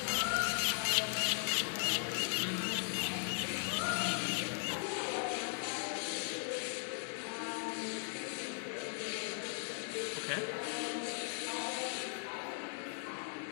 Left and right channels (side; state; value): right; silent; 52 dB below the other